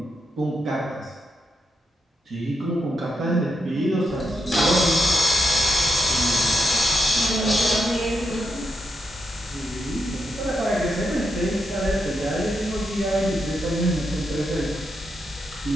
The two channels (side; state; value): both; normal; correlation 0.84